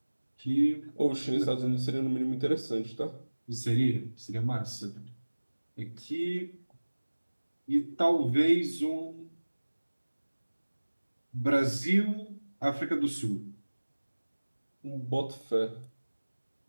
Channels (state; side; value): inverted; both; correlation -1.00